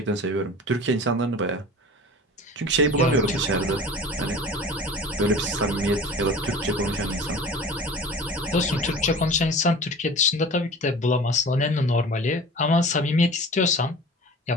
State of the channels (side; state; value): both; normal; correlation 0.40